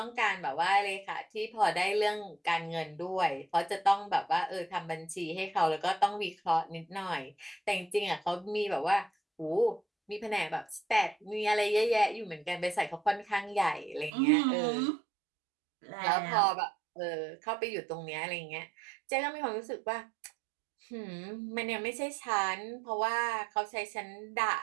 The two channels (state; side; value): drops out; left; at 14.1 s